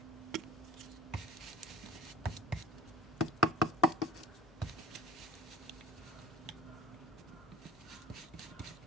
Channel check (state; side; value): normal; both; correlation 0.39